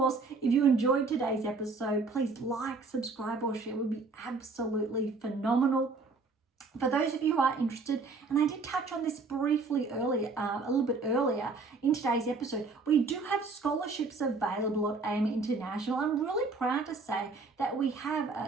if you enjoyed today's episode, please like, subscribe, or share. It would be absolutely phenomenal. For those of you who are interested, and I did touch on this briefly earlier, a little bit earlier in today's episode, we do have scholarships available at AM International. I'm really proud to say that we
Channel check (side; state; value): left; quieter; 4.0 dB